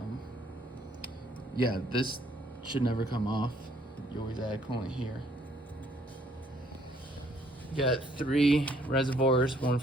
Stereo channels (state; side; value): normal; both; correlation 0.65